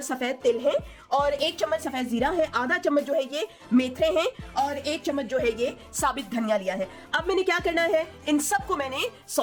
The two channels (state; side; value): identical; both; correlation 1.00